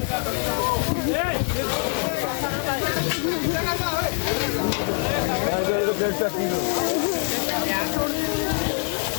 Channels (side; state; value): right; quieter; 37.4 dB